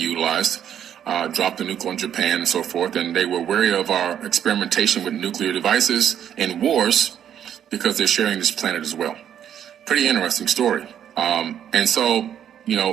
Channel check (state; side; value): quieter; left; 9.6 dB